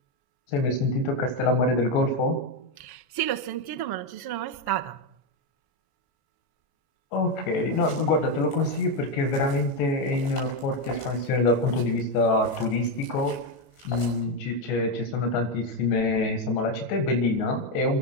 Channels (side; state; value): right; late; 14 ms